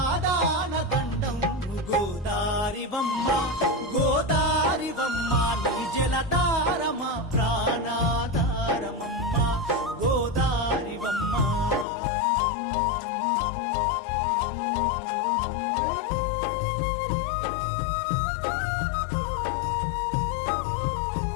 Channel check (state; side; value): drops out; right; at 11.9 s